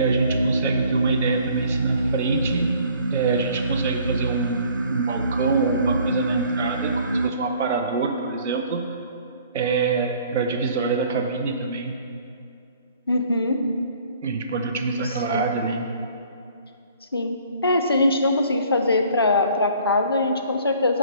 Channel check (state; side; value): inverted; both; correlation -0.56